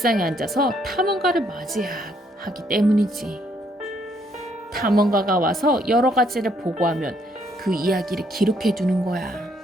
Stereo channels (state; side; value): normal; both; correlation 0.70